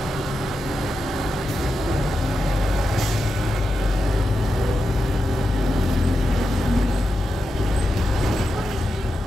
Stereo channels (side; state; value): both; normal; correlation 0.89